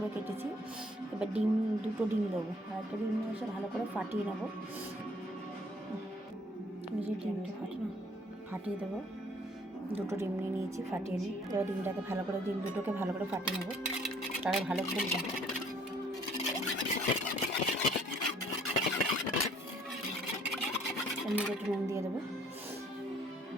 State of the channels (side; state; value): both; normal; correlation 0.59